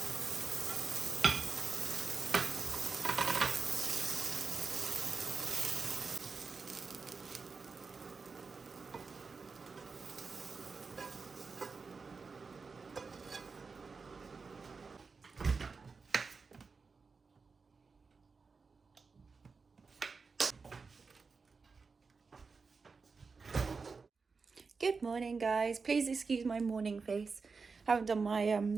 Good morning, guys. Please excuse my morning face. Haven't done my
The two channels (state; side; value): quieter; left; 4.7 dB